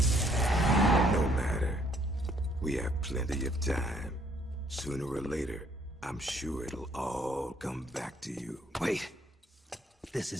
No matter. We have plenty of time. Sooner or later, I'm sure it'll all come back to you. Wait. This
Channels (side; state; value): both; normal; correlation 0.65